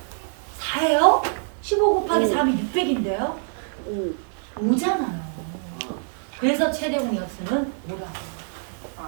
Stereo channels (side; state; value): left; silent; 62 dB below the other